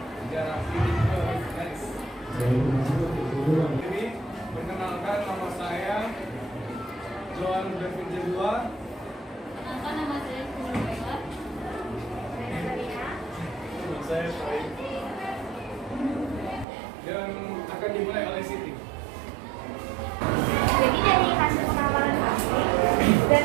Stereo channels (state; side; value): drops out; left; at 16.7 s